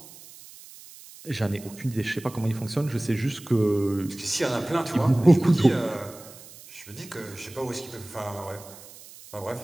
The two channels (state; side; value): noise; right; hiss, 19 dB below the sound